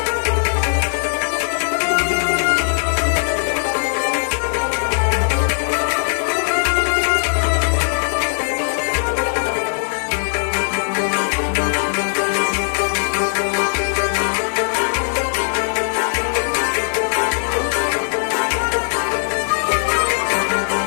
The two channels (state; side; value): silent; right; 66 dB below the other